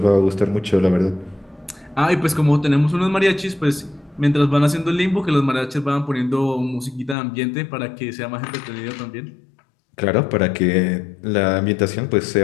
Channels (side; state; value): right; drops out; at 7.2 s